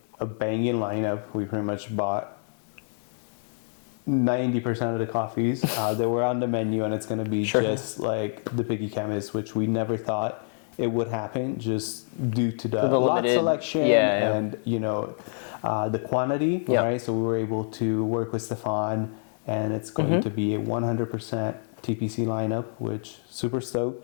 a banging lineup. We pretty much bought 90% of the coffees that were on the menu, and it's gonna be just like the Picky Chemist, which we never thought it would happen, just due to the lot selection and the quantity. Right. So we were able to work with Stefan, and it's going to be a 100% TPC lineup, which super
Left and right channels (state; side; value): silent; right; digital silence